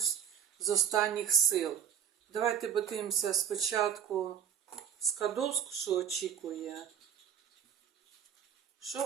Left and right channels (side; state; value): left; quieter; 8.9 dB